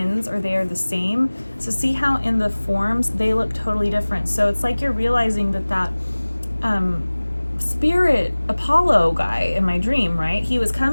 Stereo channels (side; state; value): both; inverted; correlation -1.00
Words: or they are the same. So see how in the forms they look totally different. So it's like you're realizing that spirit Apollo guy in my dream, right? He was